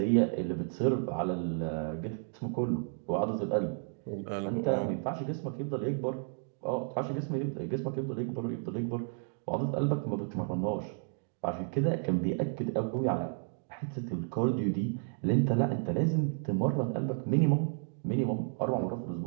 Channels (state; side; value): silent; left; 56 dB below the other